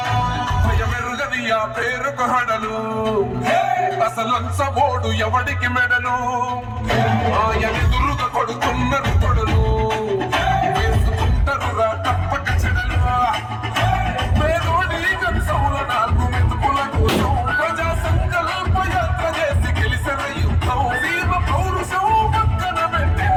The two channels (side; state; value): both; identical; correlation 1.00